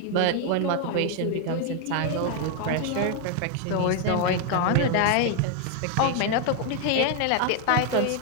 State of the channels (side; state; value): both; different; correlation 0.00